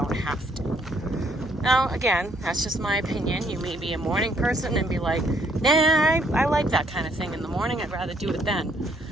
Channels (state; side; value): normal; both; correlation 0.67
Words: have to. Now, again, that's just my opinion. You may be a morning person and be like, nah, I like that kind of thing in the morning. I'd rather do it then.